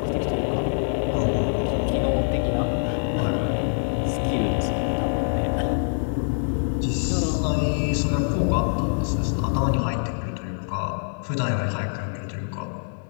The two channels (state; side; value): silent; right; digital silence